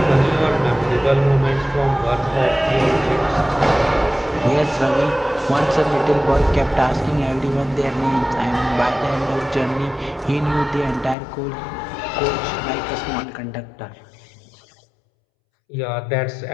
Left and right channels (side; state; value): right; drops out; at 11.2 s